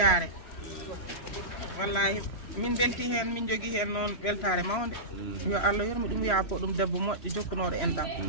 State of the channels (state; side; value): late; right; 3.0 ms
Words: wallahi min belti hen min jogui hen noon weltare mawde yo Allah yormi ɗum yaafo ɗum debbo moƴƴo jokkunoɗo enɗam